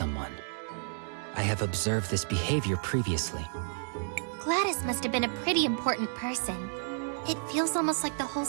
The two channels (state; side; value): silent; left; digital silence